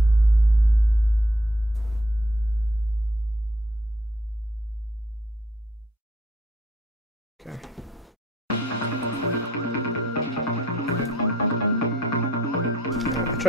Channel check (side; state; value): both; normal; correlation 0.64